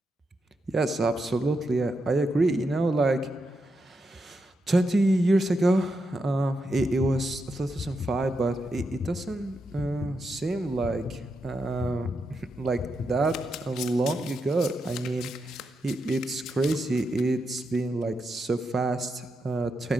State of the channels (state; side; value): normal; both; correlation 0.84